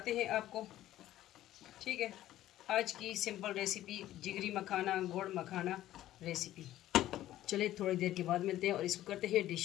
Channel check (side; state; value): right; quieter; 13.9 dB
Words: हैं आपको। ठीक है, आज की सिंपल रेसिपी जिगरी मखाना गुड़ मखाना रेसिपी। चलिए थोड़ी देर के बाद मिलते हैं और इसको करते हैं